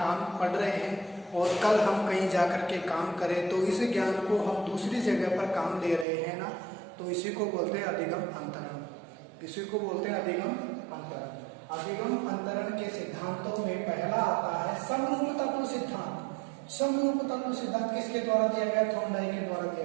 पढ़ रहे हैं और कल हम कहीं जाकर के काम करें तो इस ज्ञान को हम दूसरी जगह पर काम दे रहे हैं ना, तो इसी को बोलते हैं अधिगम अंतरण। इसी को बोलते हैं अधिगम अंतरण। अधिगम अंतरण के सिद्धांतों में पहला आता है समरूप तत्व सिद्धांत। समरूप तत्व सिद्धांत किसके द्वारा दिया गया? थॉर्नडाइक के द्वारा दिया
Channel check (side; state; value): left; drops out; at 6.1 s